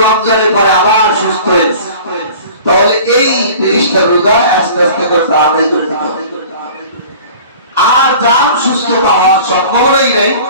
রমজানের পরে আবার সুস্থ হয়েছে, তাহলে এই 30টা রোজা আস্তে আস্তে করে আদায় করে দিতে হবে। আর যার সুস্থতা হওয়ার সম্ভাবনাই নাই,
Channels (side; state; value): both; inverted; correlation -0.44